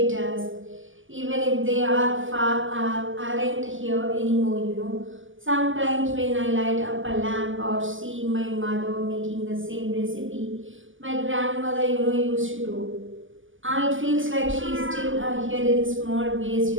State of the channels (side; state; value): left; late; 0.58 ms